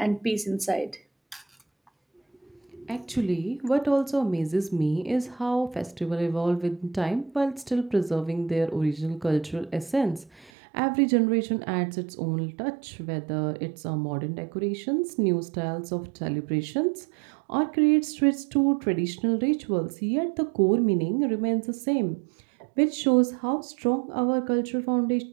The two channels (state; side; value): drops out; left; at 10.5 s